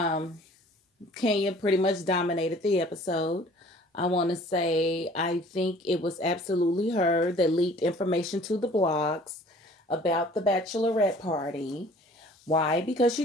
Kenya pretty much dominated the episode. I want to say I think it was absolutely her that leaked information to the blogs about the bachelorette party. Why? Because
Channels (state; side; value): normal; both; correlation 0.51